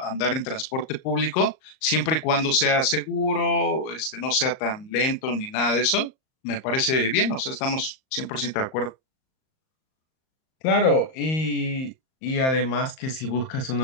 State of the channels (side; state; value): right; late; 38 ms